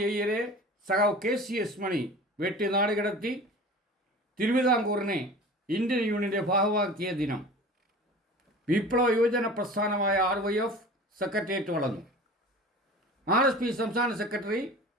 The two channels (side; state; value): both; normal; correlation 0.39